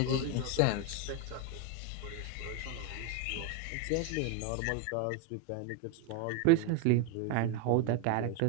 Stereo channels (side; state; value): both; different; correlation 0.02